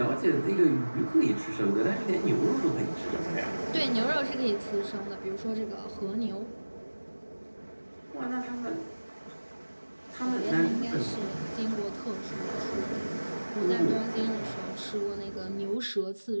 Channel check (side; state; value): both; inverted; correlation -1.00